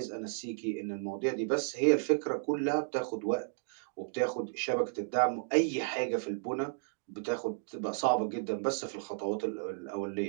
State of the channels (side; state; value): left; silent; digital silence